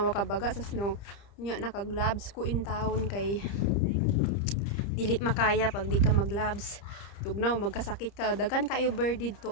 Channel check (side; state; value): right; late; 30 ms